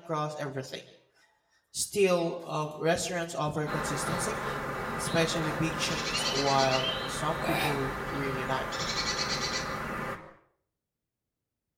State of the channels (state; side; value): identical; both; correlation 1.00